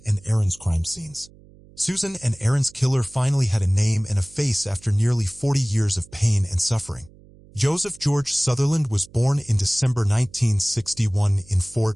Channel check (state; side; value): noise; right; hum, 25 dB below the sound